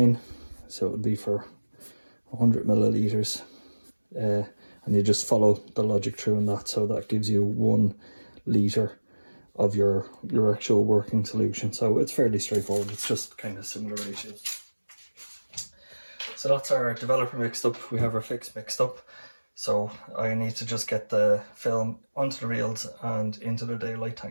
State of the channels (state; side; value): inverted; both; correlation -1.00